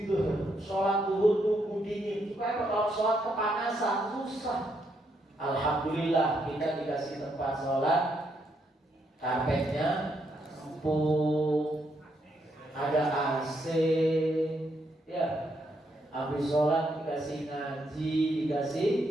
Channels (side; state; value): both; normal; correlation 0.77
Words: sholat duhur tunggu dingin. Supaya kalau sholat kepanasan susah. Alhamdulillah kita dikasih tempat sholat, karpetnya empuk, ada AC, ya. Habis sholat dikasih ngaji, dikasih